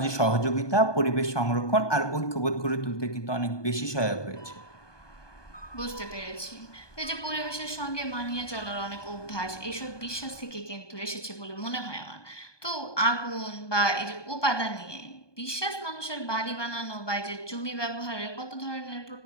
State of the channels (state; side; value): late; right; 1.2 ms